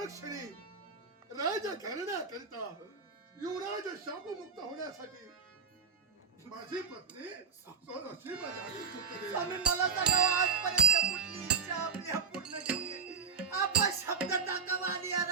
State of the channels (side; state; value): left; quieter; 5.6 dB